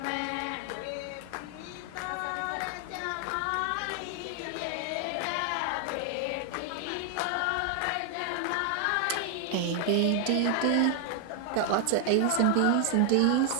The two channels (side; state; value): both; different; correlation 0.00